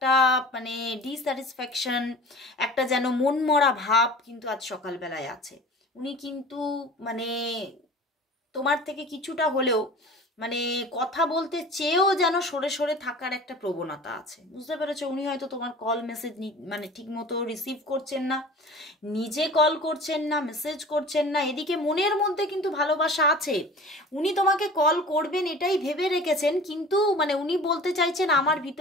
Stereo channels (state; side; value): normal; both; correlation 0.41